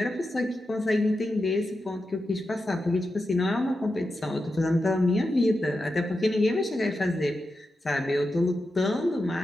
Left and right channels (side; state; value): both; normal; correlation 0.89